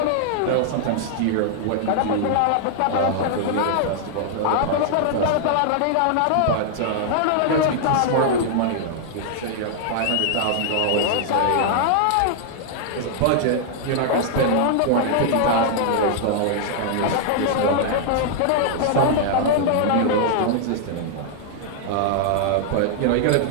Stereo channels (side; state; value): both; different; correlation -0.01